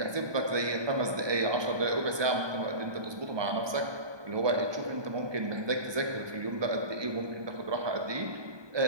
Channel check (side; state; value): left; late; 1.2 ms